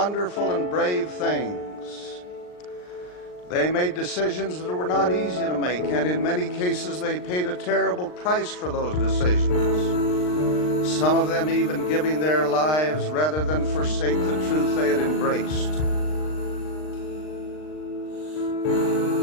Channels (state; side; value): late; right; 39 ms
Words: and brave things. They made decisions that were not easy to make, and in many cases they paid a terrible price for those decisions. Some of them even giving their lives rather than forsake the truth they had embraced.